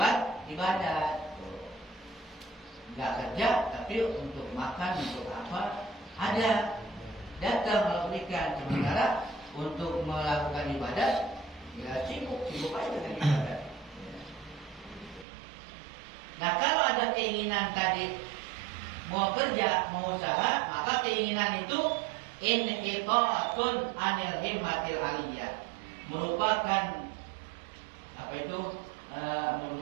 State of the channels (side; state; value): left; drops out; at 15.2 s